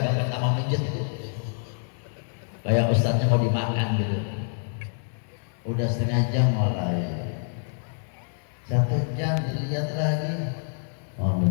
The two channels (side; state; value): right; silent; 60 dB below the other